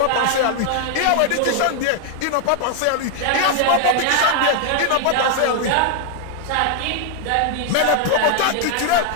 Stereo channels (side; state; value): both; different; correlation 0.00